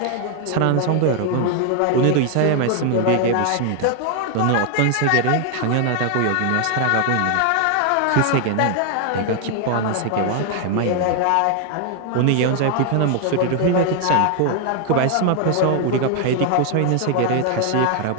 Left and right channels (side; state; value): both; different; correlation 0.00